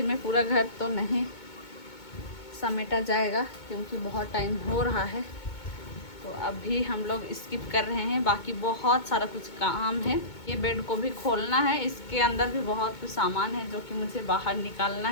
में पूरा घर तो नहीं समेटा जाएगा क्योंकि बहुत टाइम हो रहा है। तो अभी हम लोग स्किप कर रहे हैं, बाकी बहुत सारा कुछ काम है। ये बेड को भी खोलना है, इसके अंदर भी बहुत कुछ सामान है जो कि मुझे बाहर निकालना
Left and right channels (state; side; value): late; right; 2.2 ms